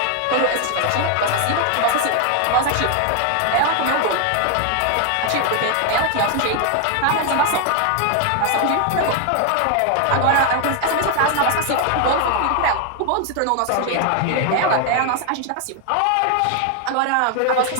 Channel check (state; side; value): different; both; correlation 0.00